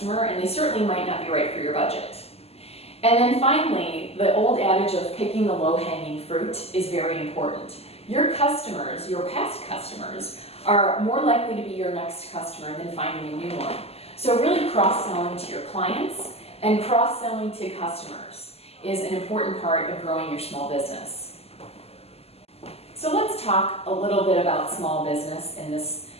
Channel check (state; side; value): late; right; 0.29 ms